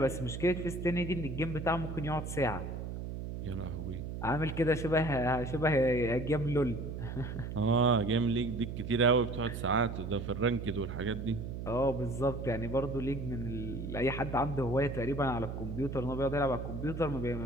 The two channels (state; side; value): noise; right; hum, 6 dB below the sound